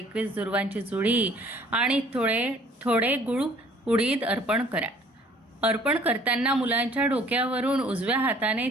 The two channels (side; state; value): both; normal; correlation 0.55